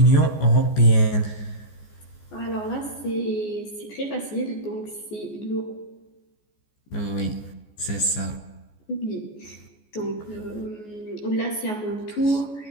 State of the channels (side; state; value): right; late; 14 ms